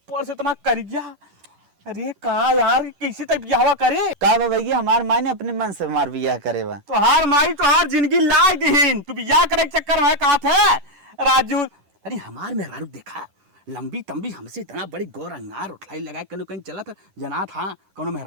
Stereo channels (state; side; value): late; left; 11 ms